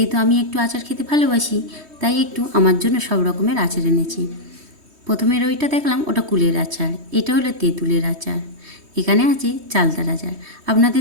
আমি একটু আচার খেতে ভালোবাসি, তাই একটু আমার জন্য সব রকমের আচার এনেছি। প্রথমের ওইটা দেখলাম, ওটা কুলের আচার, এটা হলো তেঁতুলের আচার, এখানে আছে চালতার আচার।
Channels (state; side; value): late; left; 3.2 ms